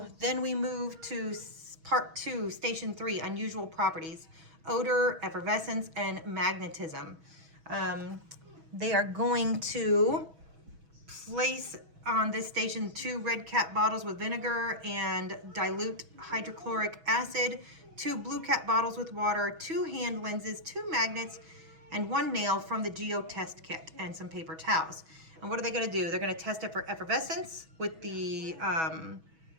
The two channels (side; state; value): left; late; 6.2 ms